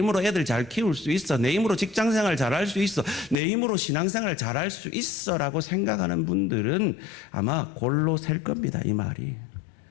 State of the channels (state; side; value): drops out; right; at 3.4 s